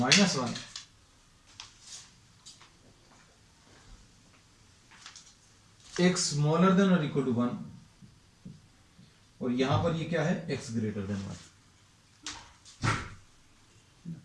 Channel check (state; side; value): identical; both; correlation 1.00